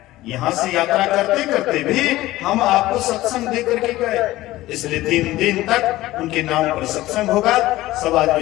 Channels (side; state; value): right; quieter; 16.8 dB